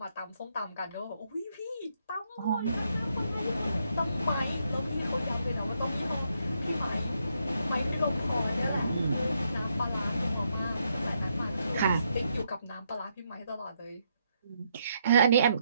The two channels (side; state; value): both; inverted; correlation -0.77